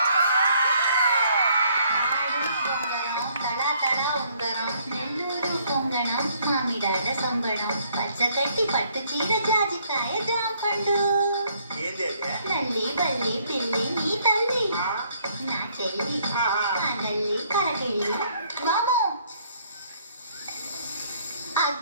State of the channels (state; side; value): inverted; both; correlation -0.65